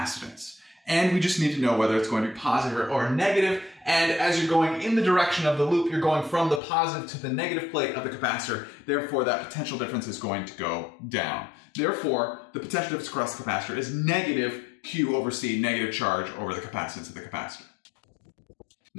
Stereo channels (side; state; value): right; drops out; at 6.6 s